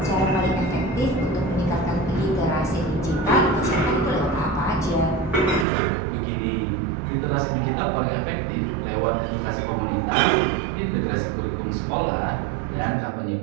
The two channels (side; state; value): left; drops out; at 5.7 s